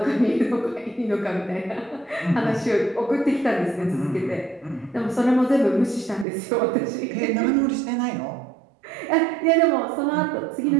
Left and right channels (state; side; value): drops out; left; at 6.2 s